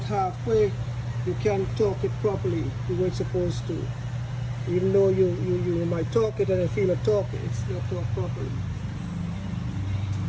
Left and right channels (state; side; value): identical; both; correlation 1.00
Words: you can't torque it properly the way it's supposed to. Even though you might torque it and you feel a torque, it's not torqued properly.